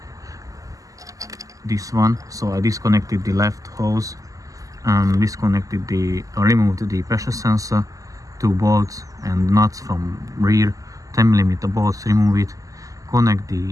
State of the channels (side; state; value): left; late; 0.17 ms